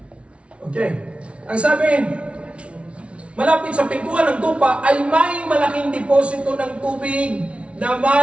okay. Ang sabi, malapit sa pintuan ng tupa ay may malaking deposito ng tubig na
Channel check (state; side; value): late; left; 0.061 ms